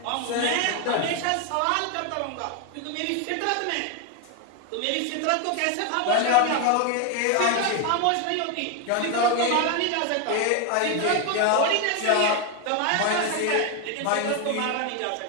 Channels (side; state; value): both; different; correlation 0.01